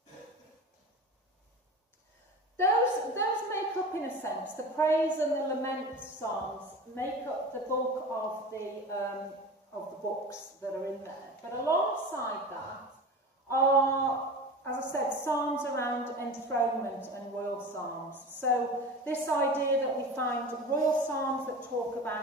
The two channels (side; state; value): both; normal; correlation 0.32